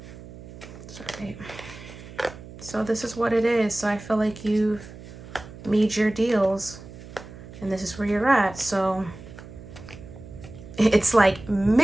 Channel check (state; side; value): noise; right; hum, 16 dB below the sound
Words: Sorry. So this is what it is. So I feel like you've made your deals. And this is where you're at. So it's like,